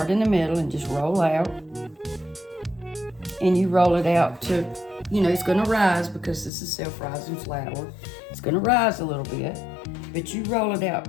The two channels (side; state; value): right; drops out; at 6.5 s